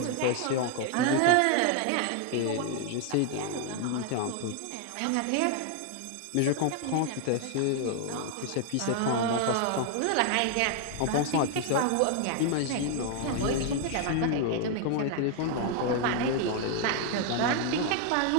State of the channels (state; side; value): different; both; correlation 0.00